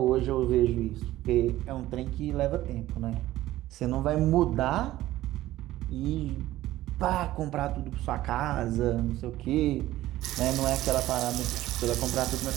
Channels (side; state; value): left; quieter; 15.3 dB